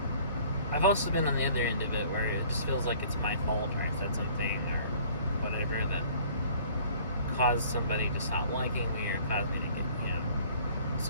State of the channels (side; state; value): both; inverted; correlation -0.53